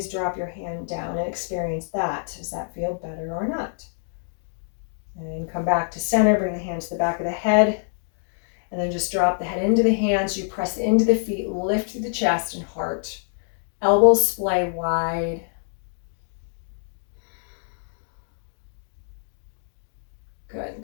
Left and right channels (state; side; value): silent; right; digital silence